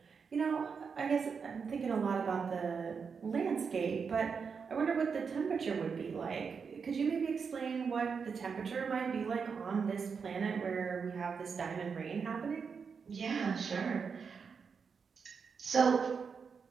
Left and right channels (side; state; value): left; quieter; 5.8 dB